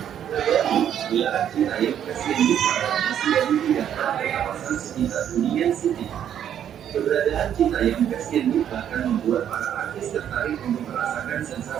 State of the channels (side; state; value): left; quieter; 9.7 dB